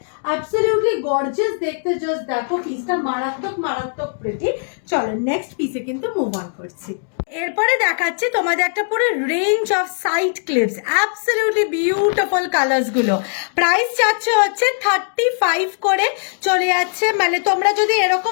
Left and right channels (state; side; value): silent; right; 66 dB below the other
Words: absolutely gorgeous দেখতে, জাস্ট দেখো পিসটা মারাত্মক মারাত্মক প্রিটি। চলো নেক্সট পিসে কিন্তু মুভ অন করছি। এরপরে দেখাচ্ছি তোমাদের একটা পুরো range of side clips, absolutely beautiful colours গুলো। প্রাইস যাচ্ছে হচ্ছে 35 করে চলে যাচ্ছে, মানে তোমরা যদি